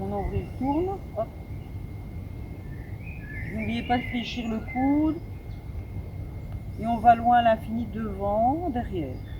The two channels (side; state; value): both; identical; correlation 1.00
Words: nombril tourne. Hop. N'oubliez pas de fléchir le coude. Et on va loin à l'infini, devant, derrière.